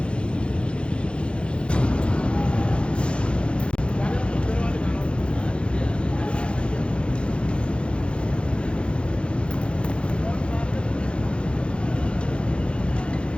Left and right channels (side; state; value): right; late; 0.057 ms